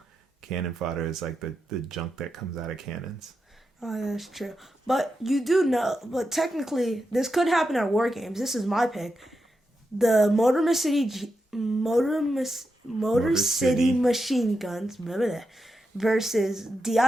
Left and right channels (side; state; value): both; normal; correlation 0.87